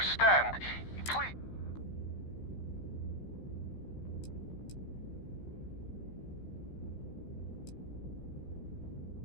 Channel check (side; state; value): right; late; 15 ms